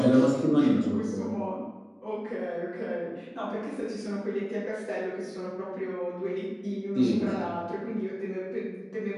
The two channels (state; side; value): identical; both; correlation 1.00